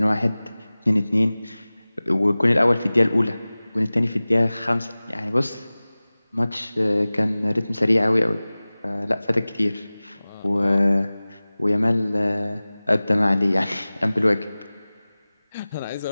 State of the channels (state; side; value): inverted; both; correlation -0.98